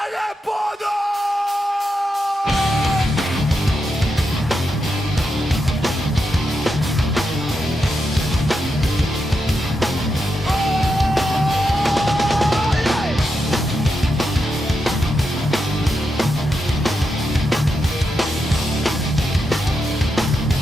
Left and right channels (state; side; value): normal; both; correlation 0.85